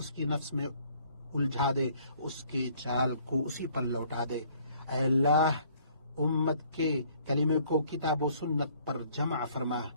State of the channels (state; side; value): inverted; both; correlation -0.60